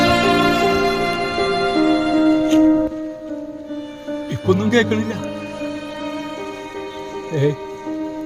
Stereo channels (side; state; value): both; identical; correlation 1.00